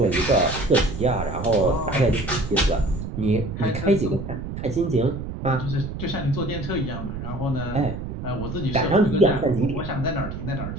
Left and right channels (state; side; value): noise; right; rumble, 7 dB below the sound